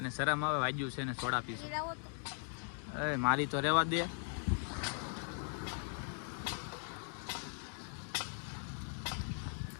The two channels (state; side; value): silent; right; 52 dB below the other